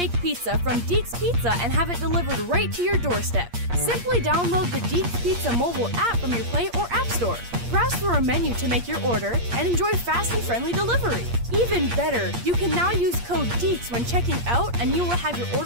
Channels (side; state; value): left; late; 8.5 ms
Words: pizza from Deeks Pizza and have it delivered right to your doorstep. Simply download the Deeks Pizza mobile app from your Play or App Store. Browse through a menu to make your order and enjoy fast and friendly delivery. Even better, you can now use code DEEKS when checking out and you will have your